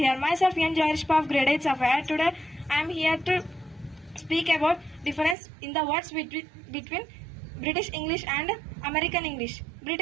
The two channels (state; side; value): drops out; left; at 5.4 s